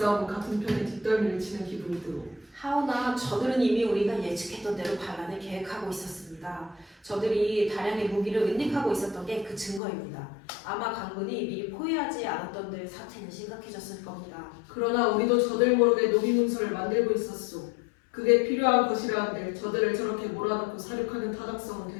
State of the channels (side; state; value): right; drops out; at 9.8 s